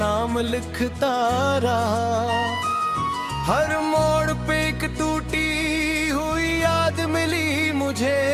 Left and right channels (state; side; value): identical; both; correlation 1.00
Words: लिखता रहा। हर मोड़ पे एक टूटी हुई याद मिली मुझे,